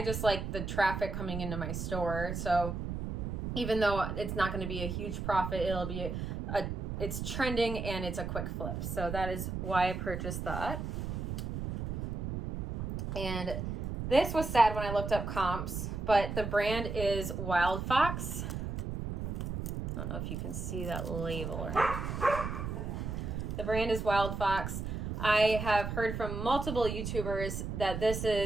just like the traffic coming into my store. So even though it's not going to be a huge profit, it'll be it's trending and it's a quick flip. So that is why I purchased that. And this was sad when I looked up comps, but the brand is Wild Fox. I don't know if you can see that label or not. The brand is Wild Fox. I have heard from multiple YouTubers that this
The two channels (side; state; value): right; noise; rumble, 4 dB below the sound